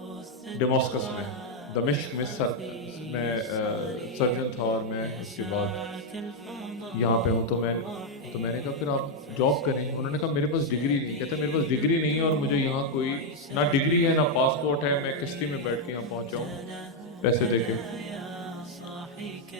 डेमास्कस में, दमिश्क में मैं सर्जन था, और मैं उसके बाद यहाँ पे हूँ। तो मैंने कहा फिर आप जॉब करें। उन्होंने कहा मेरे पास डिग्री नहीं। कहते मेरे पास डिग्री नहीं है, और मुझे यहाँ कोई ना डिग्री है ना पासपोर्ट है, मैं किश्ती में बैठ के यहाँ पहुँचा हूँ पैसे देके।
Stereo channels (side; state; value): both; normal; correlation 0.01